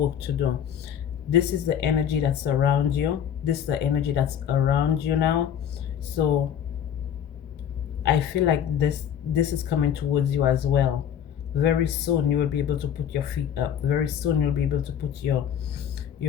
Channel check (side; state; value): right; quieter; 9.1 dB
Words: to do. This is the energy that's around you. This is the energy that's around you now. So I feel like this is coming towards you as well. Very soon you will be able to put your feet up. Very soon you'll be able to put your